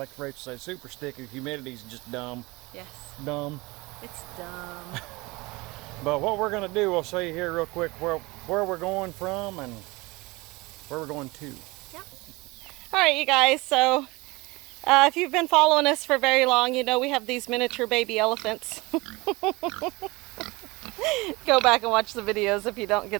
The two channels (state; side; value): quieter; left; 23.4 dB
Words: Rachel said, super sticky. The humidity's just dumb. Yes. Dumb. It's dumb. But what we're going to do, we'll show you here real quick where we're going from and where we're going to. Yep. All right, you guys. So if you've been following us for very long, you know we have these miniature baby elephants. Go back and watch the videos if you don't